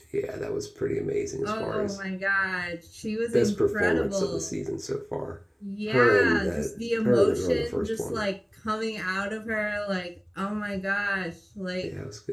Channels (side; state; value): both; identical; correlation 1.00